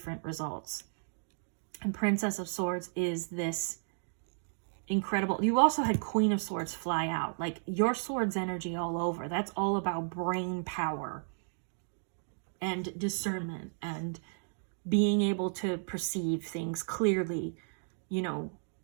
results. And Princess of Swords is this incredible. You also had Queen of Swords fly out. Like, your swords energy all over. That's all about brain power and discernment and being able to perceive things clearly. You know,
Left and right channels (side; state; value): left; silent; digital silence